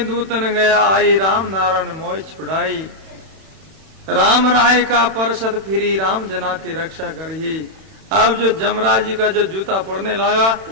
दूतन गया आई, राम नारायण मोह छुड़ाई। राम राय का परसत फिरी, राम जना की रक्षा करही। अब जो जमराज जी का जो जूता पड़ने लगा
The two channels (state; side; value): late; left; 31 ms